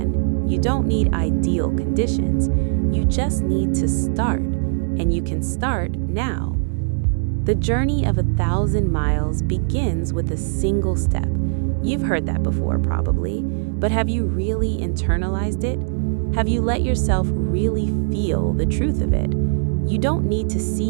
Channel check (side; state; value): left; silent; digital silence